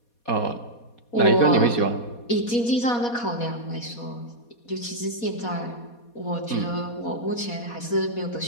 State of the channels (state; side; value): late; right; 4.2 ms